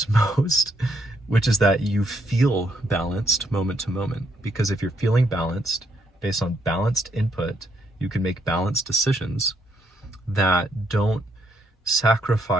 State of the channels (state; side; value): normal; both; correlation 0.75